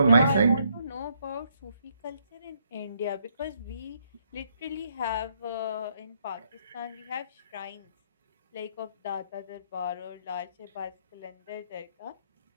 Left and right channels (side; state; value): both; inverted; correlation -0.72